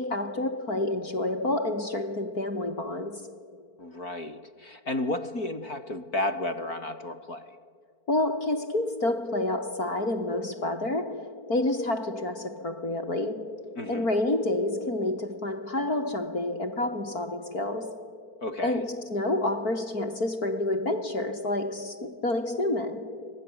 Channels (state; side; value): late; right; 4.5 ms